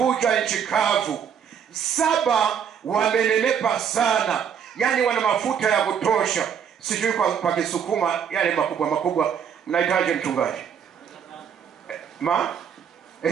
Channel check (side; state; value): left; quieter; 7.8 dB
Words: nchi kavu. 7 wamenenepa sana, yani wana mafuta ya kutosha. Sijui kwa Kisukuma yale makubwa mnahitaji mchungaji?